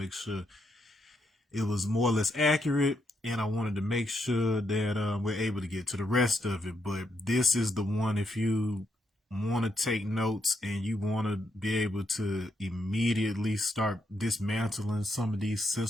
sure it was more or less accurate, and I wanted to make sure that we're able to get to the rest of it. But this is the one, if you want to take notes and you want to be able to immediately start dismantling some of these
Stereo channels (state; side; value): normal; both; correlation 0.79